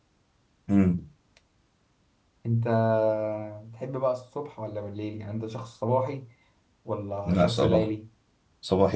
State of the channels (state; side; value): identical; both; correlation 1.00